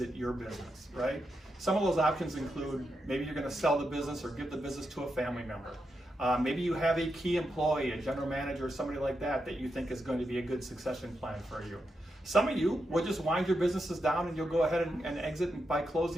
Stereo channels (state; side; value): normal; both; correlation 0.85